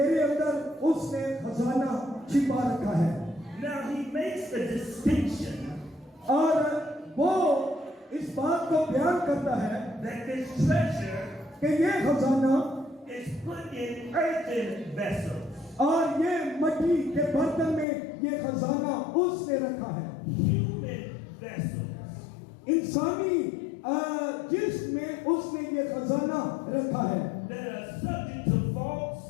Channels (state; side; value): drops out; right; at 17.9 s